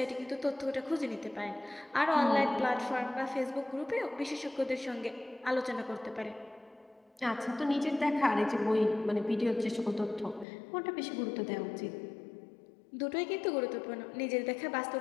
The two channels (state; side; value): drops out; right; at 10.5 s